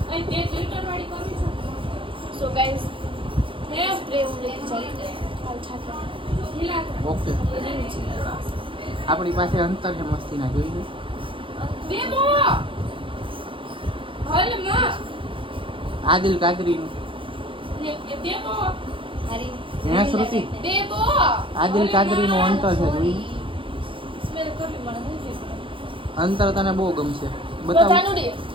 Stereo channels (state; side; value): late; left; 0.25 ms